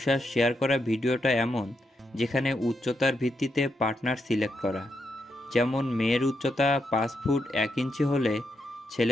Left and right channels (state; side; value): normal; both; correlation 0.82